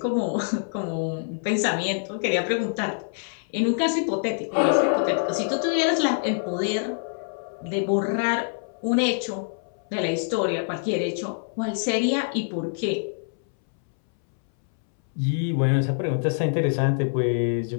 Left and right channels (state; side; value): silent; right; 62 dB below the other